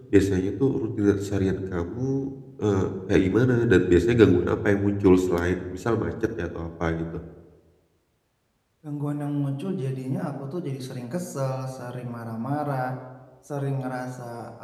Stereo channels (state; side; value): identical; both; correlation 1.00